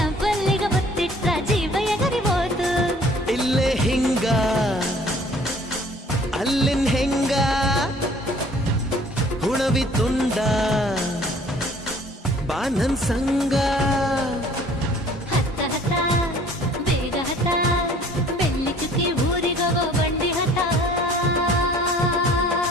ಮುತ್ತಿಟ್ಟ ಜೀವ ಎಗರಿಬೋದು ಇಲ್ಲೇ ಹಿಂಗ ಅಲ್ಲಿನ್ ಹೆಂಗ ಹುಣವಿ ತುಂಡ ಬಾ ನನ್ ಸಂಗ ಹತ್ತ ಹತ್ತ ಬೇಗ ಹತ್ತ ಬೆಳ್ಳಿ ಚುಕ್ಕಿ ಊರಿಗವ ಬಂಡಿ ಹತ್ತ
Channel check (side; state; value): both; normal; correlation 0.54